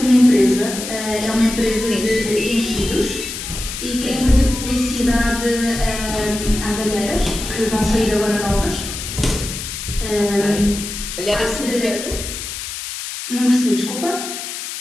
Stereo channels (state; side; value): noise; left; hiss, 7 dB below the sound